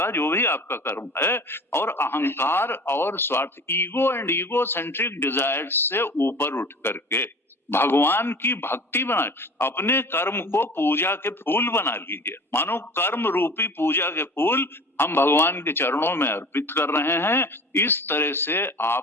जो भी आपका कर्म है, और अहंकार और स्वार्थ, ego and ego centric desires से ऊपर उठ करके भगवान की भक्ति बनाए, अपने कर्म को पूजा के फूल बना लीजिए। मानो कर्म रूपी पूजा के फूल हम भगवान के चरणों में अर्पित कर रहे हैं, इस तरह से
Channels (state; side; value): normal; both; correlation 0.40